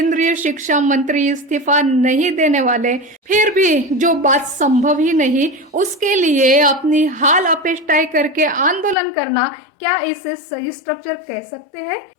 शिक्षा मंत्री इस्तीफा नहीं देने वाले, फिर भी जो बात संभव ही नहीं उसके लिए अपनी हाल अपेष्टाई करके आंदोलन करना, क्या इसे सही स्ट्रक्चर कह सकते हैं?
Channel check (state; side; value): drops out; right; at 9.0 s